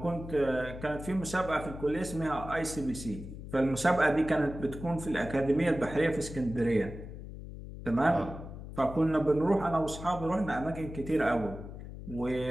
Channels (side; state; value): left; noise; hum, 11 dB below the sound